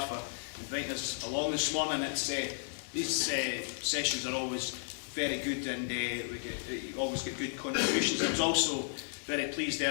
for inviting us along this morning. These sessions are always very good, and we always get good contributions. I was also very pleased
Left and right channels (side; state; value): right; silent; digital silence